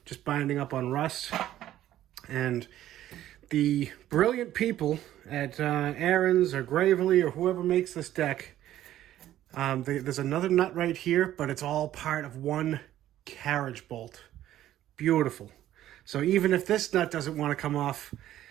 just binding up on rust. And the brilliant people at Ariens or Gravely or whoever makes this deck, there's another nut right here, but it's all part of one carriage bolt. Beautiful. So even if this nut doesn't want to come off,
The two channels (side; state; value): left; quieter; 12.9 dB